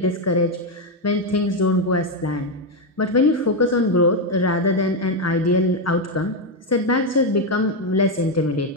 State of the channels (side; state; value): both; normal; correlation 0.05